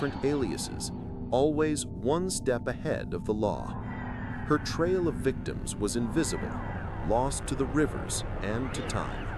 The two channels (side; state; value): both; identical; correlation 1.00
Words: aliases, always one step ahead of the law. Her trail of victims was invisible, lost to the rivers and to time.